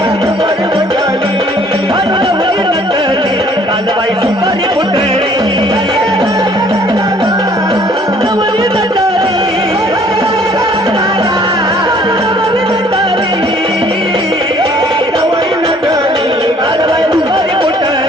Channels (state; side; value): normal; both; correlation 0.58